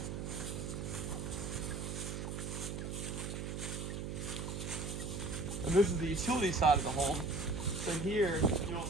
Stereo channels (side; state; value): right; noise; hum, 4 dB below the sound